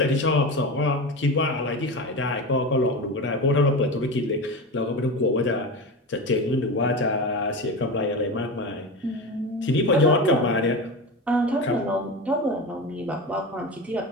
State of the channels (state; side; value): normal; both; correlation 0.24